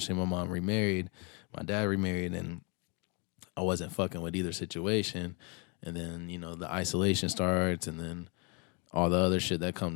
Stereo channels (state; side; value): quieter; right; 33.4 dB